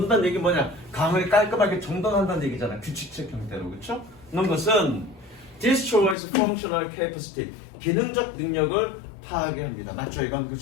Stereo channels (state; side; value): drops out; right; at 6.2 s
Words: 얘기 뭐냐? 강을 깔끔하게 정돈한다는 얘기잖아. 규칙적 형태로. 그렇죠? 넣는 것은 destroys functional capacity, 기능적 능력을 파괴 합니다. 맞죠? 이건